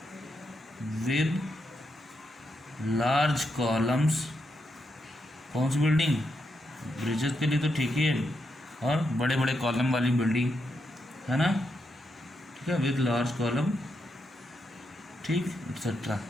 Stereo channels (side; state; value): both; normal; correlation 0.83